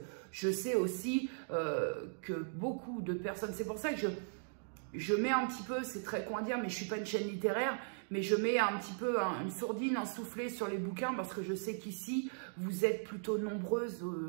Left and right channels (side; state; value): left; silent; digital silence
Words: je sais aussi que beaucoup de personnes, c'est pour ça que je mets un petit peu, c'est très con à dire, mais je suis pas une chaîne littéraire, mais je mets un petit peu une sourdine, un soufflet sur les bouquins parce que je sais qu'ici, vous êtes plutôt nombreuses,